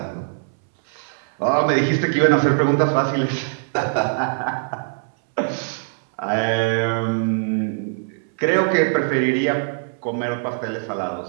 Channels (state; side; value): silent; left; 64 dB below the other